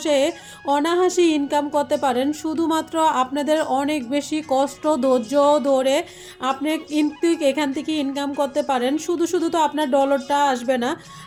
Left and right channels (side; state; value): both; identical; correlation 1.00